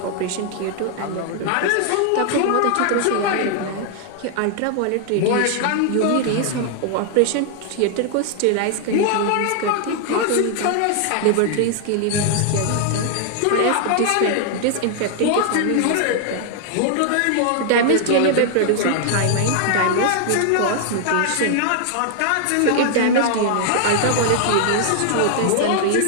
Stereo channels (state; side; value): different; both; correlation 0.00